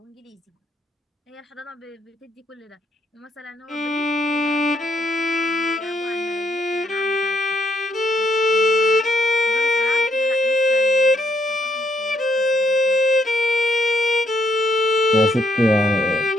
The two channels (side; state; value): both; normal; correlation 0.73